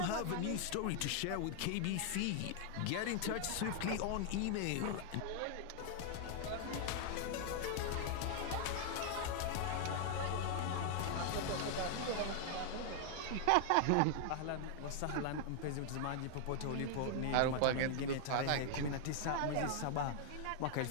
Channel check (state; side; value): different; both; correlation 0.00